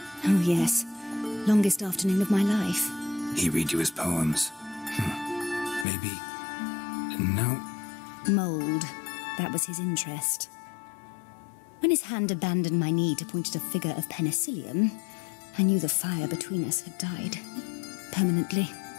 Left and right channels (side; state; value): right; drops out; at 5.9 s